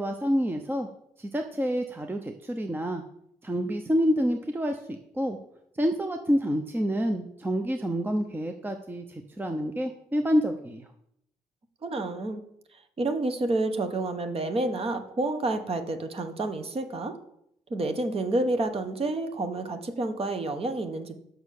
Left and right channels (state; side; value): normal; both; correlation 0.81